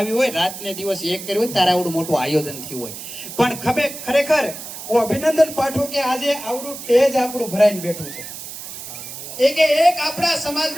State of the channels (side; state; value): right; noise; hiss, 11 dB below the sound